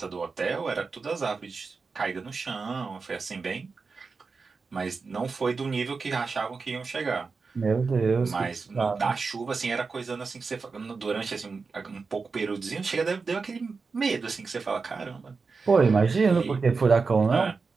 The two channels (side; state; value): left; quieter; 4.6 dB